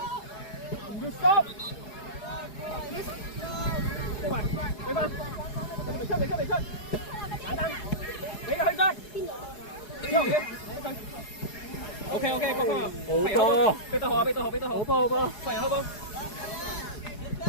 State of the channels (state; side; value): late; right; 4.8 ms